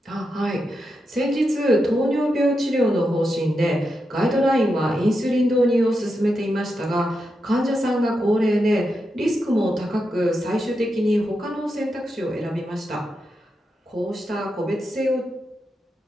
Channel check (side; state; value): both; normal; correlation 0.86